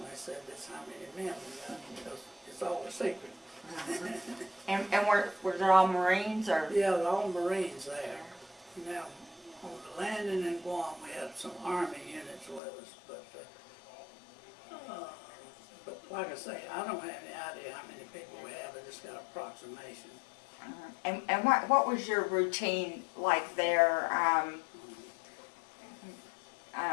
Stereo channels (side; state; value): right; drops out; at 12.6 s